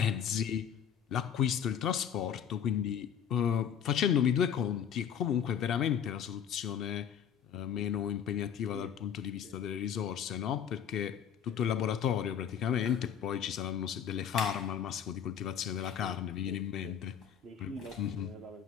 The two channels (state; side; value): quieter; right; 8.5 dB